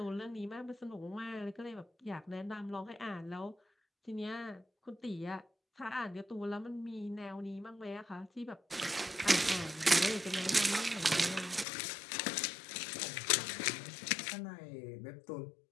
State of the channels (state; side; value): drops out; right; at 11.7 s